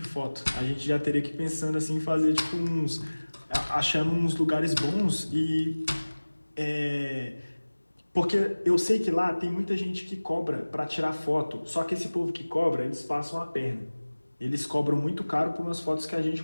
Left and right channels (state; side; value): inverted; both; correlation -1.00